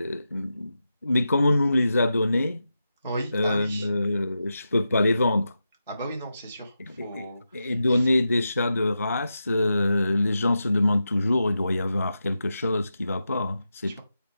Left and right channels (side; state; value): both; inverted; correlation -0.89